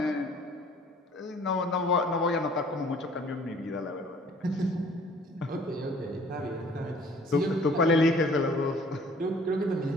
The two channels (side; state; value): both; normal; correlation 0.54